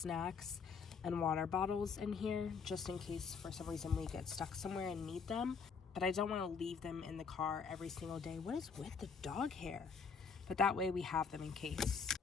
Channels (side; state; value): right; quieter; 5.6 dB